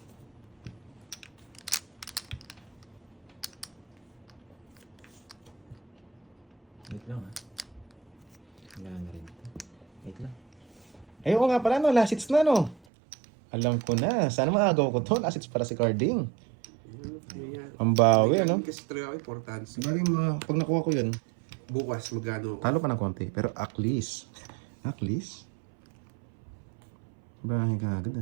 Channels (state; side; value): drops out; left; at 12.8 s